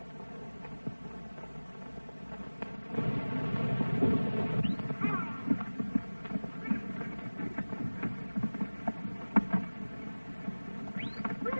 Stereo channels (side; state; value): both; inverted; correlation -1.00